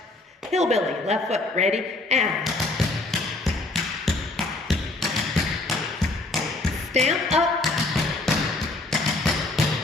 Hillbilly, left foot, ready, and stamp up,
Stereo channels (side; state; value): right; quieter; 3.0 dB